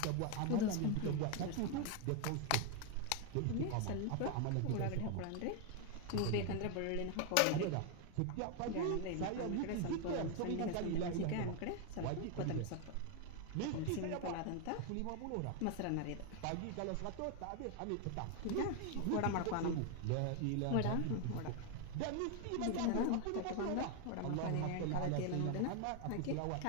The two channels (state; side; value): different; both; correlation 0.01